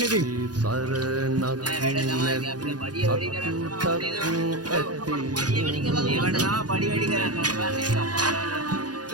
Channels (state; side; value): late; left; 0.69 ms